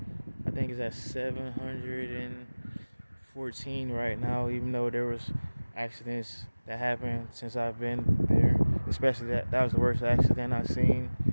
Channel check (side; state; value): both; inverted; correlation -1.00